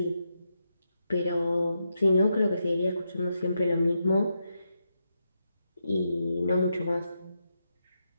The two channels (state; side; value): inverted; both; correlation -0.84